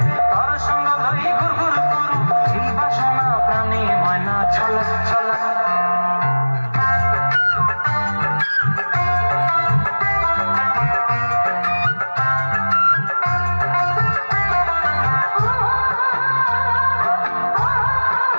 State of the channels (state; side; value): inverted; both; correlation -1.00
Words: তর সঙ্গ লই ঘুরঘুর করুম এই বাসনা প্রাণে। ময়না ছলা ছলা।